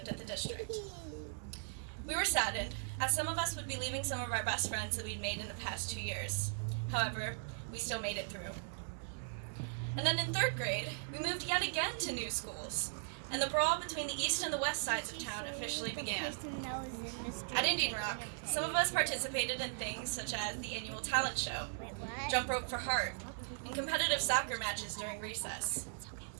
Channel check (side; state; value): left; silent; digital silence